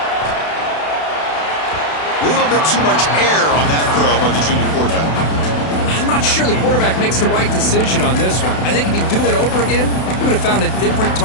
A little bit too much air on that throw by the junior quarterback. I'm not sure the quarterback makes the right decision on this one. I think if he'd do it over again, he would have found a different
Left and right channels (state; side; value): late; right; 32 ms